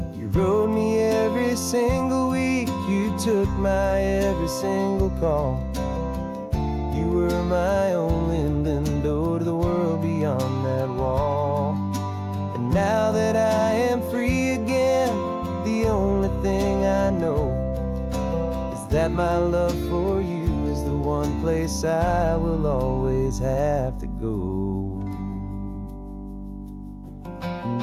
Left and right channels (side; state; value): both; identical; correlation 1.00